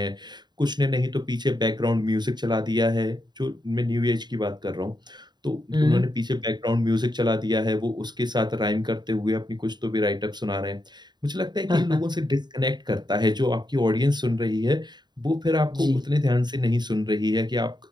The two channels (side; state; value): left; late; 0.21 ms